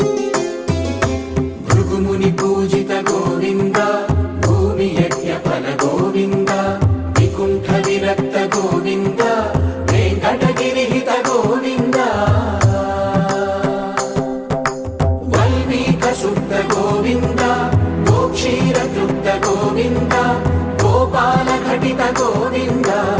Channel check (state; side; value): identical; both; correlation 1.00